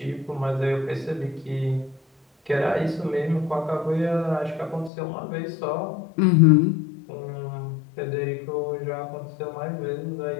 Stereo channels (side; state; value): right; drops out; at 4.9 s